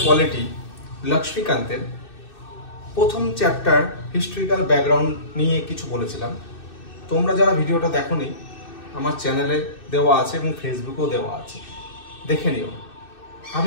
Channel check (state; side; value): late; right; 2.6 ms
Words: পলিটি লক্ষ্মীকান্তের প্রথম চ্যাপ্টার হিস্ট্রিক্যাল ব্যাকগ্রাউন্ড নিয়ে কিছু বলেছিলাম। তোমরা যারা ভিডিওটা দেখোনি, আমার চ্যানেলে দেওয়া আছে এবং ফেসবুকেও দেওয়া আছে, দেখে নিও।